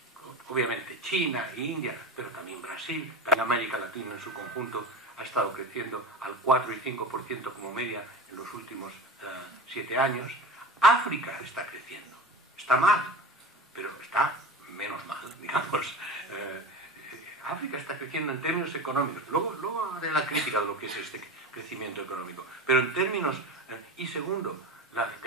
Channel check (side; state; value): both; normal; correlation 0.29